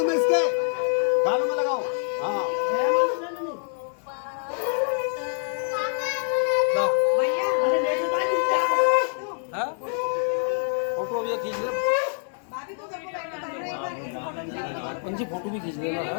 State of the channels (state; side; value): silent; right; 61 dB below the other